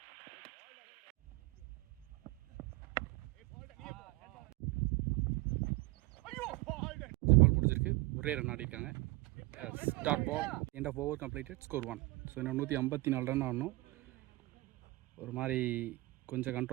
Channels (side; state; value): left; quieter; 21.8 dB